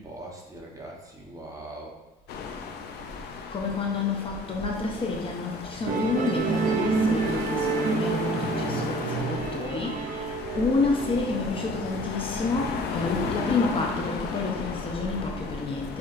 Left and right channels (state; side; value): normal; both; correlation 0.49